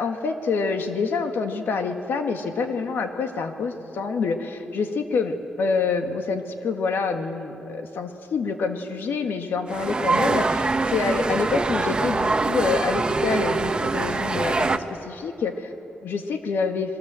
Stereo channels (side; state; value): both; normal; correlation 0.73